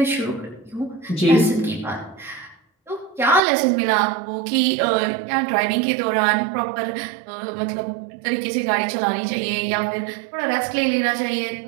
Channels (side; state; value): left; drops out; at 3.4 s